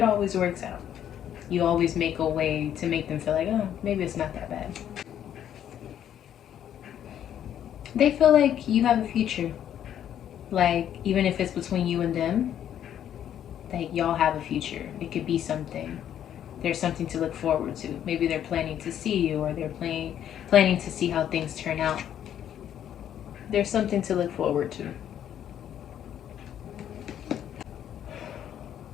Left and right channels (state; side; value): quieter; right; 10.2 dB